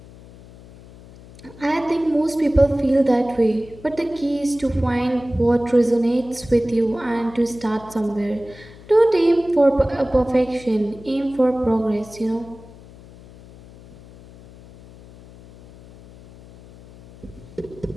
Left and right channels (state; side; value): noise; left; hum, 21 dB below the sound